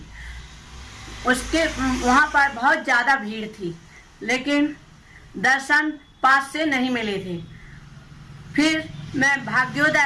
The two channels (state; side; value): identical; both; correlation 1.00